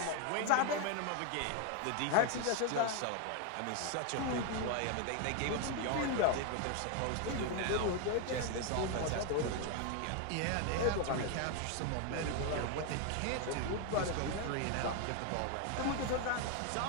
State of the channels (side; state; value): both; different; correlation 0.01